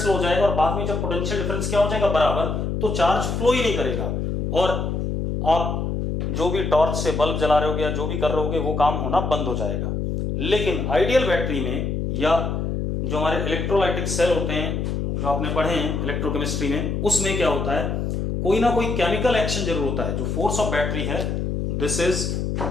हो जाएगा और बाद में जब पोटेंशियल डिफरेंस क्या हो जाएगा, बराबर, तो चार्ज फ्लो ही नहीं करेगा और आप जो भी टॉर्च से बल्ब जला रहे होगे या जो भी कर रहे होगे वो काम होना बंद हो जाएगा। लेकिन आइडियल बैटरी में या जो हमारे इलेक्ट्रोलाइटिक सेल होते हैं, जो आपने पढ़े हैं इलेक्ट्रोकेमिस्ट्री में, उसमें क्या होता है, कोई ना कोई केमिकल एक्शन जरूर होता है। जो फोर्स ऑफ बैटरी है, this is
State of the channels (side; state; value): left; noise; hum, 1 dB below the sound